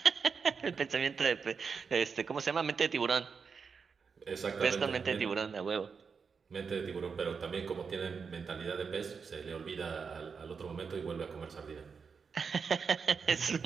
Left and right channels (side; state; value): left; quieter; 5.7 dB